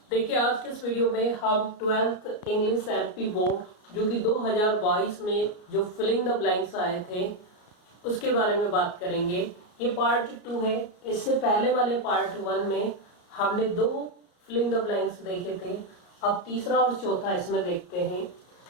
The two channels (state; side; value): late; right; 33 ms